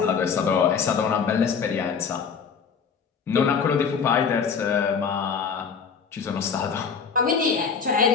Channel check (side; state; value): right; quieter; 6.2 dB